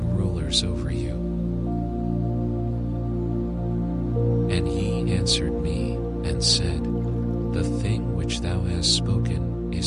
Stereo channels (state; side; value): identical; both; correlation 1.00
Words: rulers over you. And he answered me, and said, The thing which thou hast spoken